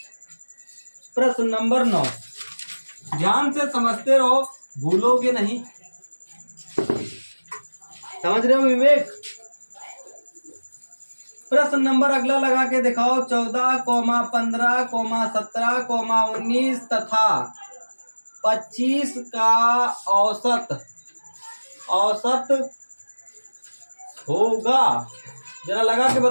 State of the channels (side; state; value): both; inverted; correlation -1.00